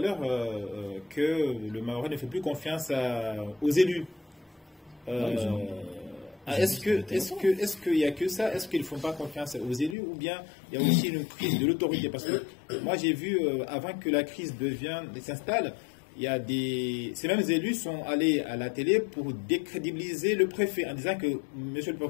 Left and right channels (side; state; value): right; drops out; at 10.0 s